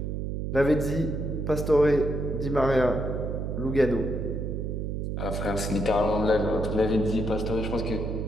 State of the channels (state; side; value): noise; right; hum, 3 dB below the sound